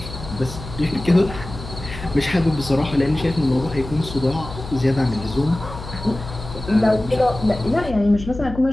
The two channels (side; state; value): left; noise; hum, 12 dB below the sound